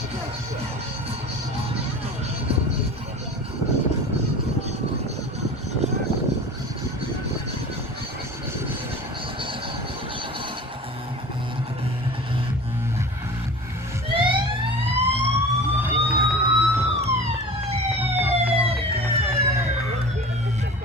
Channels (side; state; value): both; normal; correlation 0.37